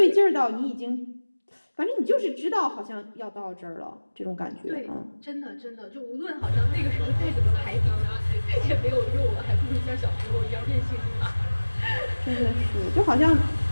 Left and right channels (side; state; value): both; inverted; correlation -1.00